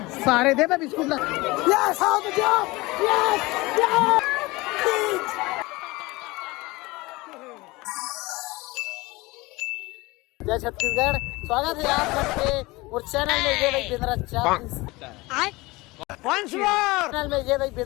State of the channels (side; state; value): right; quieter; 22.0 dB